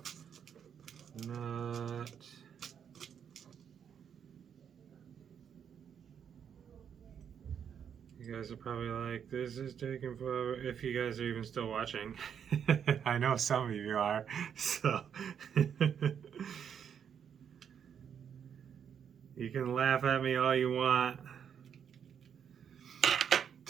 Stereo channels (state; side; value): quieter; left; 8.0 dB